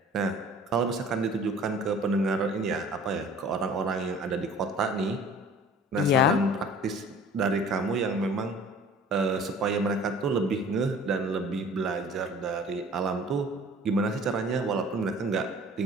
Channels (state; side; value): normal; both; correlation 0.47